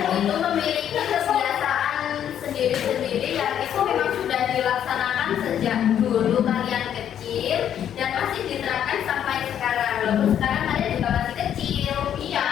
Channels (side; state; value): right; quieter; 9.7 dB